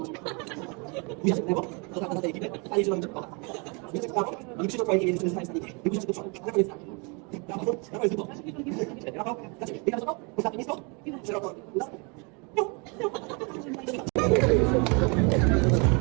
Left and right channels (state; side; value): quieter; left; 32.6 dB